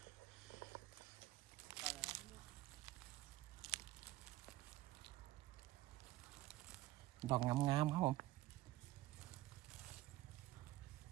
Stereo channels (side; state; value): left; quieter; 16.4 dB